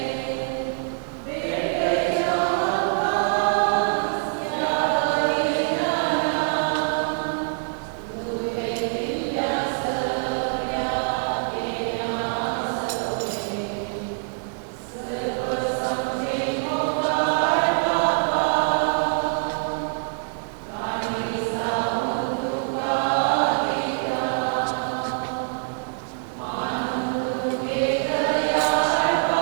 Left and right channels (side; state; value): left; silent; digital silence